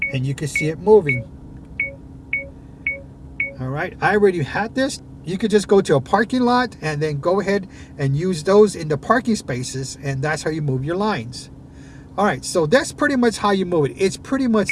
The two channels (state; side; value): identical; both; correlation 1.00